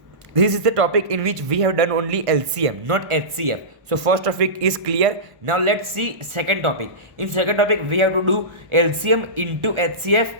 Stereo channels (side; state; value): left; late; 1.2 ms